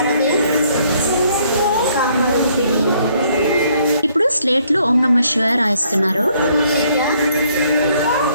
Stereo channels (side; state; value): both; inverted; correlation -0.67